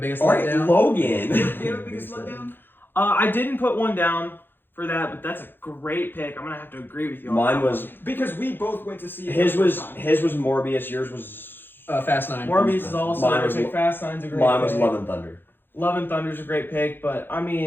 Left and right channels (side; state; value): right; late; 0.10 ms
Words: All right, letdown? Logan. Do you have a biggest letdown? I didn't put one down for that, but that's a great pick. I'm gonna have to agree with you. On Mine that was Because we both went to see it. his the was first time. his was Morbius. Yours was Fast 9. one. Morbius is also Mine a was great pick. Fast 9's a great mine was pick. Love and Thunder. Love and Thunder's a great pick, but I